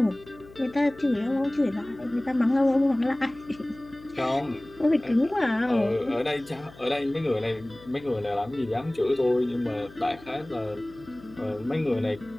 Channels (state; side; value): noise; left; hum, 21 dB below the sound